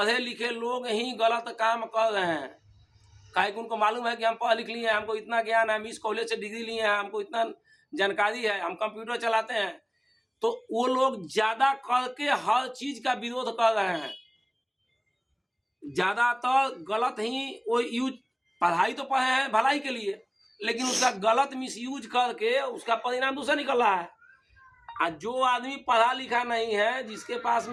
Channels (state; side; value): identical; both; correlation 1.00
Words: लिखे लोग ही गलत काम कर रहे हैं। काहे कि उनको मालूम है कि हम पढ़ लिख लिए हैं, हमको इतना ज्ञान है, हम इस कॉलेज से डिग्री लिए हैं, हमको इतना जानकारी है, हम कंप्यूटर चलाते हैं। तो वो लोग ज़्यादा करके हर चीज़ का विरोध कर रहे हैं। ज़्यादातर गलत ही वो यूज, पढ़ाई तो पढ़े हैं भलाई के लिए, लेकिन उसका गलत मिसयूज करके उसका परिणाम दूसरा निकल रहा है। जो आदमी पढ़ा लिखा नहीं है, जिसके पास